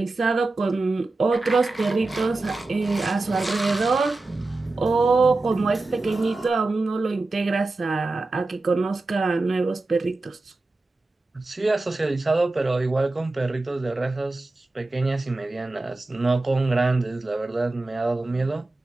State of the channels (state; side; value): quieter; left; 3.2 dB